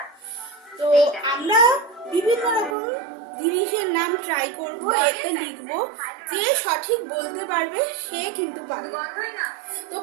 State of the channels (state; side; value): drops out; left; at 2.8 s